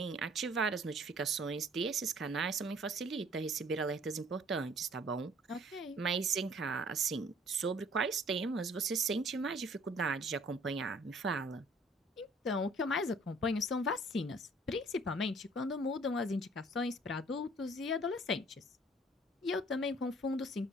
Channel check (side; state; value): both; normal; correlation 0.56